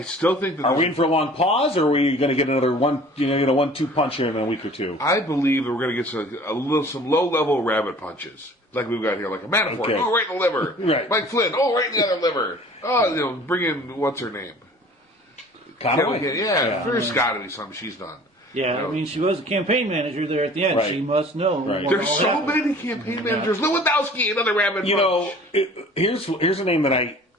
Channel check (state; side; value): normal; both; correlation 0.48